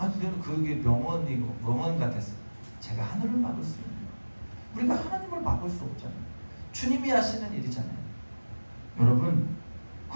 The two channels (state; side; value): inverted; both; correlation -1.00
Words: 저는 그게 명언 같았어요. 제가 하늘을 막을 수 있나요? 우리가 하나님을 막을 수 없잖아요. 주님이 하시는 일이잖아요. 여러분,